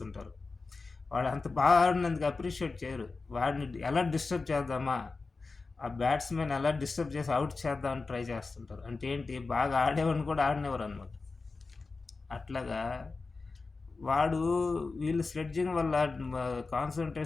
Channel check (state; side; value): quieter; right; 4.0 dB